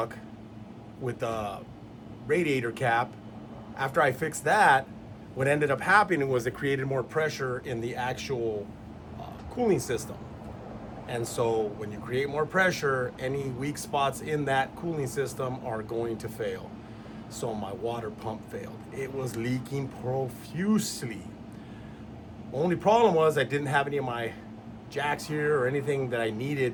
with the radiator cap, after I fixed that, what ended up happening was it created more pressure in the actual cooling system. And so when you create more pressure, any weak spots in that cooling system are going to fail. So my water pump failed. It was leaking profusely. Only problem was I didn't have any of my jacks here or anything that I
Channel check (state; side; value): identical; both; correlation 1.00